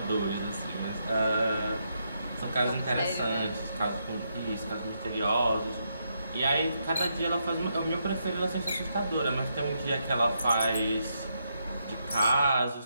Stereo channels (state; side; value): inverted; both; correlation -0.80